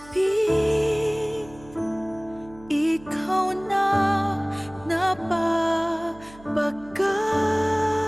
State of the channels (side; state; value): right; noise; hum, 22 dB below the sound